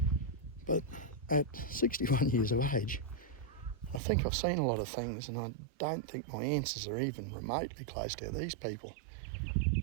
But at 61 years of age, I think I've seen a lot of things, and I don't think my answers are even remotely close to these people.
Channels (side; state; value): left; drops out; at 4.0 s